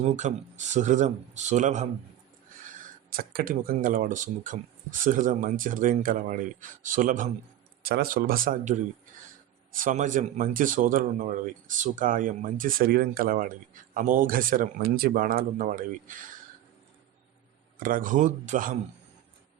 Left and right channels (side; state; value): left; quieter; 12.5 dB